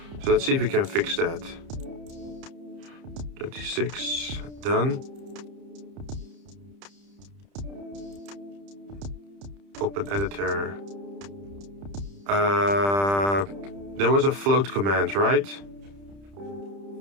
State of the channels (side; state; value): left; late; 30 ms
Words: So let's see if we can fix that. 26, done. Open editor. There was a float command, right?